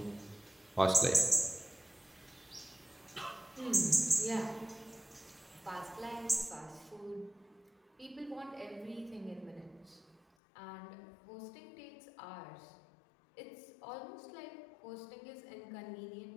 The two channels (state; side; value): drops out; right; at 10.2 s